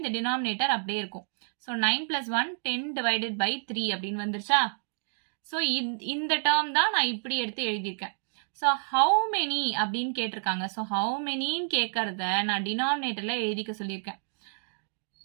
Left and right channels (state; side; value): silent; left; digital silence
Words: இந்த டினாமினேட்டர் அப்படியே இருக்கும். ஸோ 9 + 1 10 divided by 3 அப்படின்னு வந்துருச்சா. ஸோ இந்த டேர்ம் தான் நான் இப்படி எடுத்து எழுதியிருக்கேன். ஸோ ஹவு மெனி அப்படின்னு கேட்டிருக்காங்க. ஸோ ஹவு மெனின்னு கேட்கறத நான் டினாமினேட்டர்ல எழுதிக்க சொல்லியிருக்கேன்.